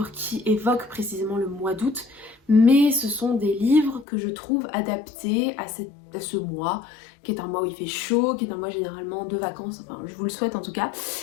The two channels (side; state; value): right; drops out; at 4.0 s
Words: qui évoquent précisément le mois d'août, mais ce sont des livres que je trouve adaptés à ce mois, qui est un mois où il fait chaud, qui est un mois généralement de vacances, enfin je vous le souhaite en tout cas.